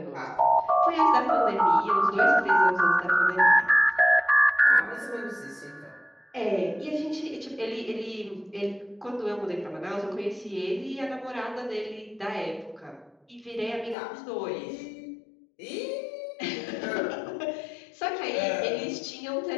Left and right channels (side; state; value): right; drops out; at 14.0 s